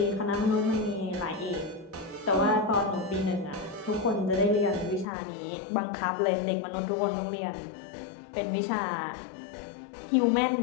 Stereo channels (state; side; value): drops out; right; at 5.1 s